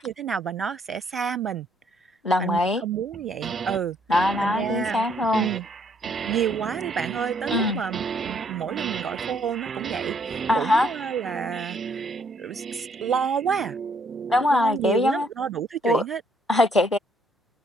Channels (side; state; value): both; normal; correlation 0.67